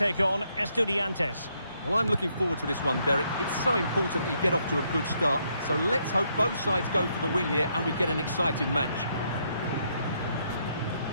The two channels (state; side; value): inverted; both; correlation -0.74